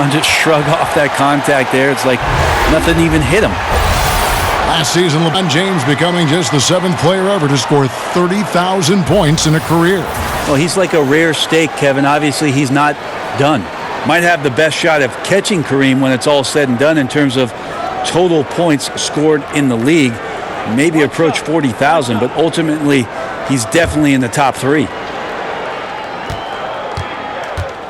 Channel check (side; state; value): both; identical; correlation 1.00